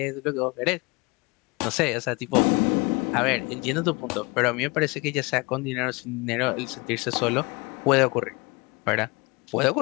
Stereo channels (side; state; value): right; quieter; 26.4 dB